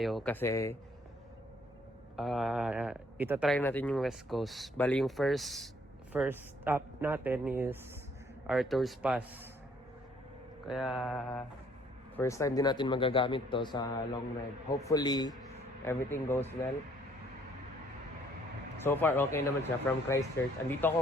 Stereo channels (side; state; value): both; normal; correlation 0.63